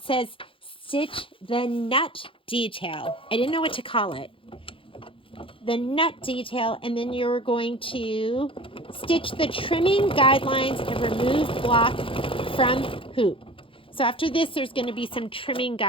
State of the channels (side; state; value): right; late; 0.26 ms